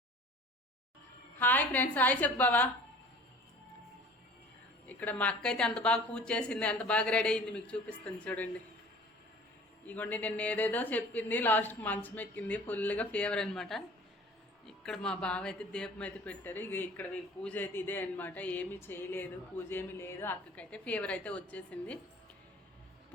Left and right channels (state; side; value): normal; both; correlation 0.46